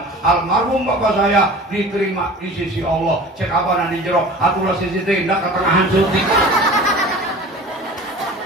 almarhum bapak saya diterima di sisi Allah. Cek abana di jero atulah sisi tindak ketengahan syuting.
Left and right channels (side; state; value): both; normal; correlation 0.40